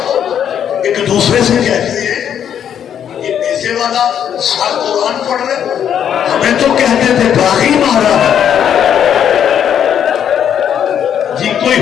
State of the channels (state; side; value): quieter; right; 9.1 dB